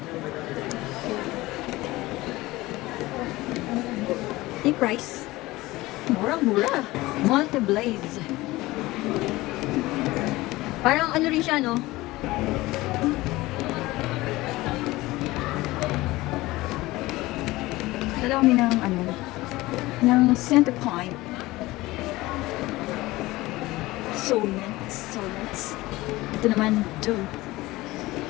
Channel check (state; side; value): quieter; right; 19.2 dB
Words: Yung price. Murang-mura. Multi-blaze. Parang ano rin siya, no? Dala kami ng center point. Soulmates. Ito naman,